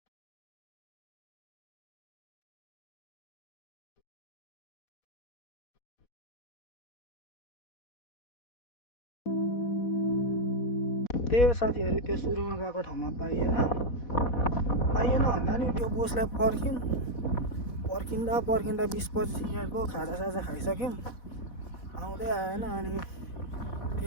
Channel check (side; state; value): right; late; 4.1 ms